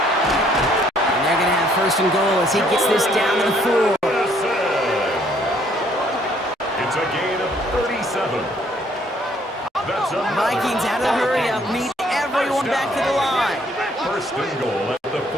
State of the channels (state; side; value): normal; both; correlation 0.65